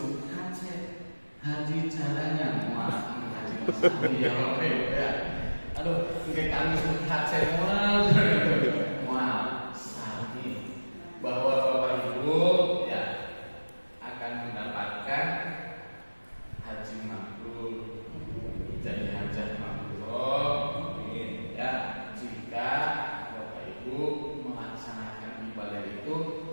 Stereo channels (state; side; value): inverted; both; correlation -1.00